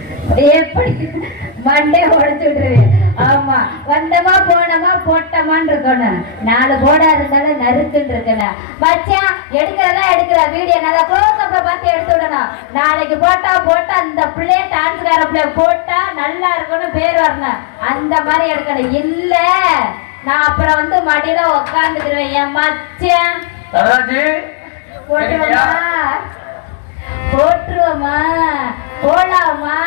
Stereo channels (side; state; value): right; drops out; at 8.5 s